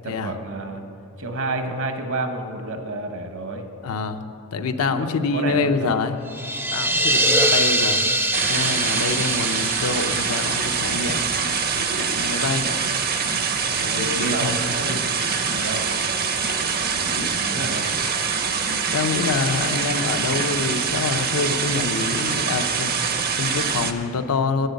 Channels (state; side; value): normal; both; correlation 0.00